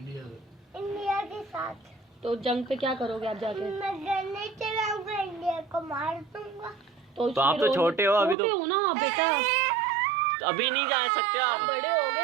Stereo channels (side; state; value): left; drops out; at 8.3 s